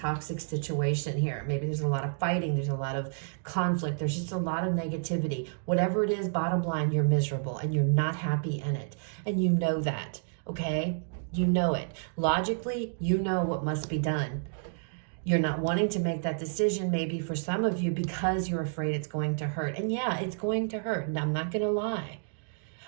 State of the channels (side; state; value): left; silent; digital silence